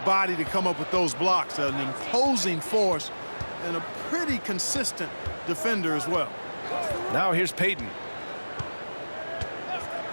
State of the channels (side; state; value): both; inverted; correlation -1.00